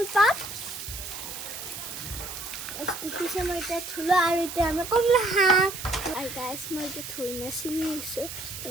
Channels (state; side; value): noise; right; hiss, 9 dB below the sound